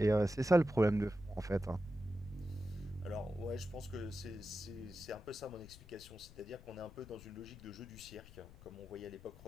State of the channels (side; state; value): left; noise; rumble, 18 dB below the sound